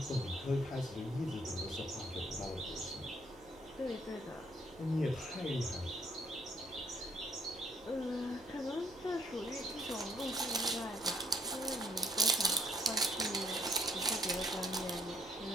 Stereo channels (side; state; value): left; noise; hum, 25 dB below the sound